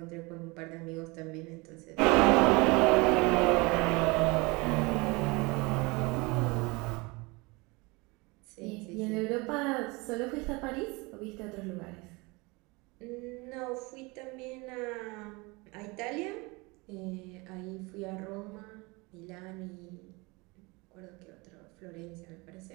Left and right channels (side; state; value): left; quieter; 25.8 dB